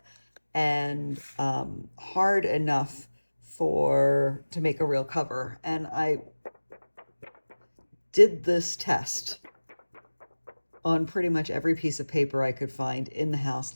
and hard enough to make a real cover. And I did this test on pretty much every piece of paper I could find in the house,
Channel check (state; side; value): inverted; both; correlation -1.00